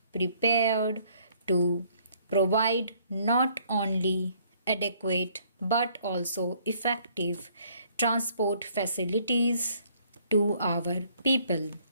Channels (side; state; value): both; inverted; correlation -0.63